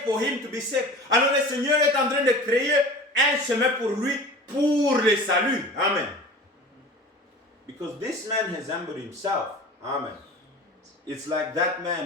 for him to be saved. Alors, le Seigneur est en train de créer un chemin pour lui, pour le salut. Amen. Because this man has humbled himself. Amen. It's like that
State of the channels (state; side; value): normal; both; correlation 0.38